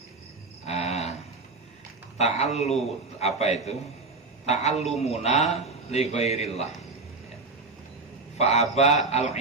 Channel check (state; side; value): quieter; left; 3.7 dB